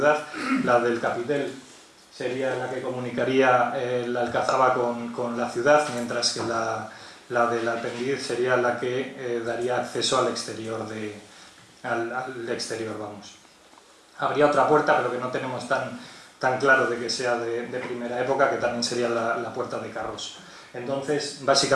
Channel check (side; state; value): both; identical; correlation 1.00